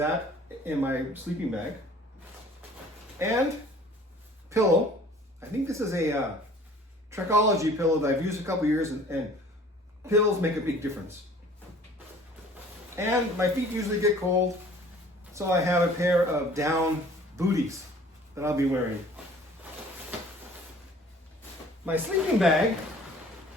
in my sleeping bag. And pillow. I think this is a Trekology pillow that I've used a couple years, and pillows make a big difference. And my feet usually get cold, so I have a pair of down booties that I'll be wearing. My sleeping bag,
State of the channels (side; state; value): both; normal; correlation 0.51